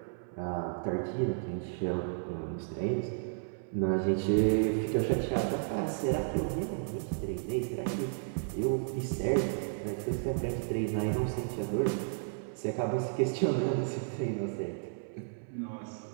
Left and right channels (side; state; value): left; silent; 56 dB below the other